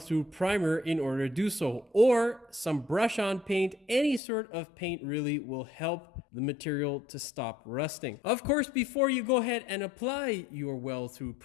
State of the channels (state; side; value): drops out; right; at 4.2 s